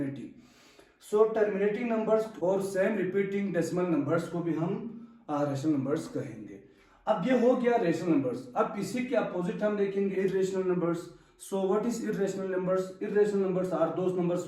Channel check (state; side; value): identical; both; correlation 1.00